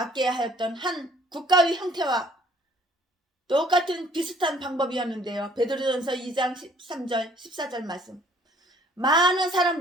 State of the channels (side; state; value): both; normal; correlation 0.58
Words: 하였던 한 국가의 형태와 똑같은 비슷한 방법이었는데요. 베드로전서 2장 13절 14절 말씀. 많은